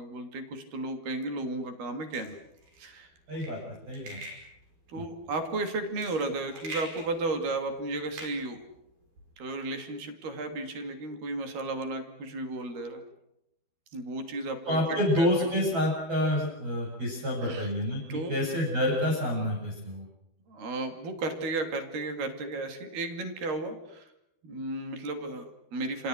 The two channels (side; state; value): left; late; 12 ms